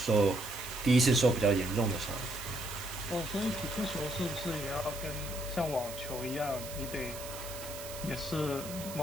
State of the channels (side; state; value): right; noise; hiss, 11 dB below the sound